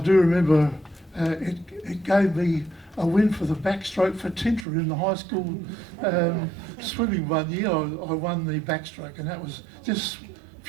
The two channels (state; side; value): drops out; left; at 4.7 s